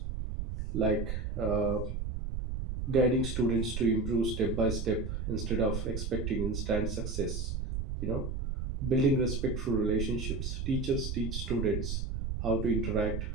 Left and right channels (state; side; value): noise; right; rumble, 3 dB below the sound